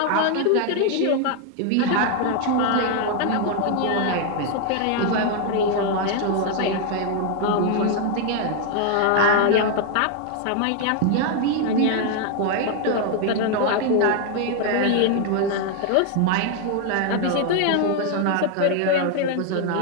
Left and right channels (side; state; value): both; different; correlation 0.00